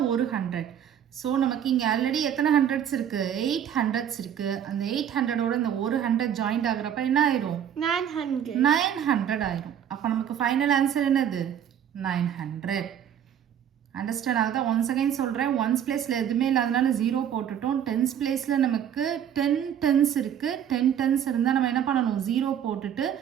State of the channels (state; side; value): quieter; left; 9.3 dB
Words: ஒரு 100. ஸோ நமக்கு இங்கே ஆல்ரெடி எத்தனை ஹண்ட்ரட்ஸ் இருக்குது, 8 ஹண்ட்ரட்ஸ் இருக்குது. அந்த 800ஓட இந்த ஒரு 100 ஜாயிண்ட் ஆகுறப்ப என்ன ஆயிரும், 900 ஆயிரும். அப்போ நமக்கு ஃபைனல் ஆன்சர் என்னது, 900. அண்டர்ஸ்டாண்ட் ஆகுதா? ஒன்ஸ் அகைன் சொல்கிறேன், ஒன்ஸ் பிளேஸில் எதுவுமே இல்லாதனால 0 போட்டுட்டோம். டென்ஸ் பிளேஸில் நமக்கு 10 டென்ஸ் இருக்குது. 10 டென்ஸ் இருந்தால் நம்ம என்ன பண்ணணும், 0 போட்டுட்டு